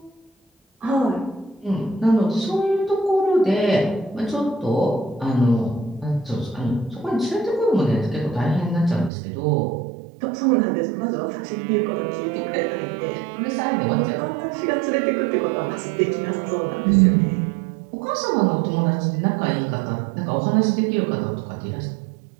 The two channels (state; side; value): drops out; left; at 9.1 s